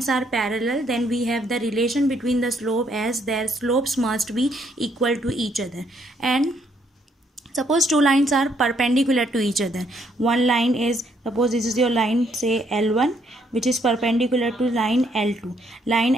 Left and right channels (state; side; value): normal; both; correlation 0.71